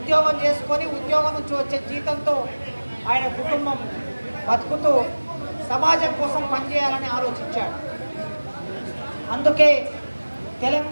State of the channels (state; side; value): inverted; both; correlation -1.00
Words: చేసుకొని ఉద్యోగం నుంచి వచ్చే జీతంతో ఆయన కుటుంబం బతుకుతూ సమాజం కోసం పనిచేయాలని ఆలోచించాడు. అందుకే